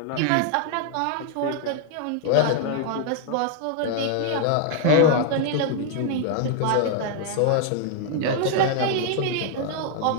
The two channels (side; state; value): both; different; correlation 0.00